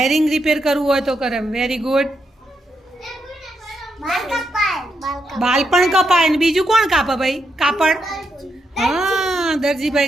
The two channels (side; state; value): both; normal; correlation 0.81